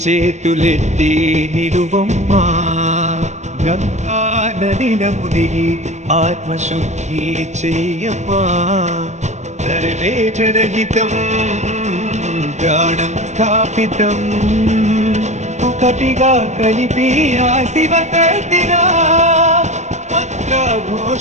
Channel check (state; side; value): late; left; 0.34 ms